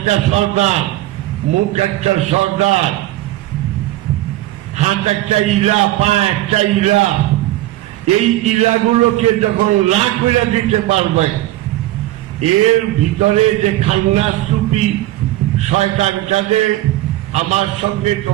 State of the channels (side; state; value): left; quieter; 16.0 dB